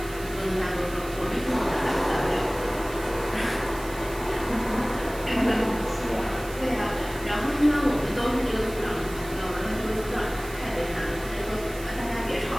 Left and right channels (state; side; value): noise; right; hiss, 16 dB below the sound